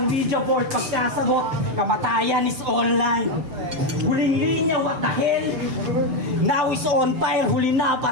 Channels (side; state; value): left; late; 7.5 ms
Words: video board. Pagkasagot, kamatayan is online. Huling linya, what the hell? Now is on fire. Huli na